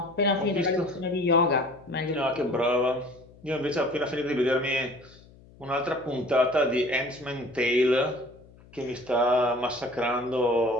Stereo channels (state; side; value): noise; left; hum, 24 dB below the sound